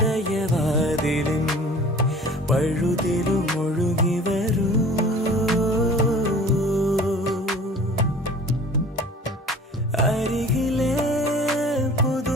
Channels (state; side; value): normal; both; correlation 0.45